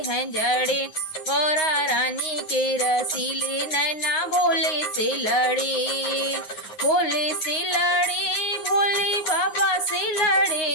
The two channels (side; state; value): right; late; 9.5 ms